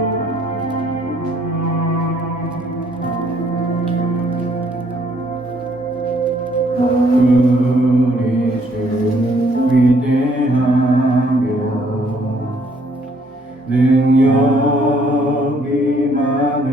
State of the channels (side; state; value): both; normal; correlation 0.65